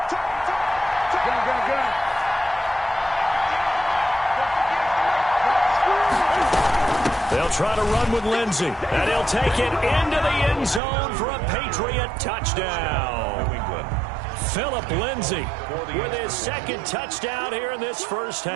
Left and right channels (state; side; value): drops out; left; at 10.8 s